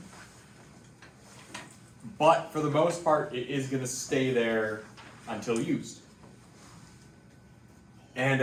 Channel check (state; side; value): identical; both; correlation 1.00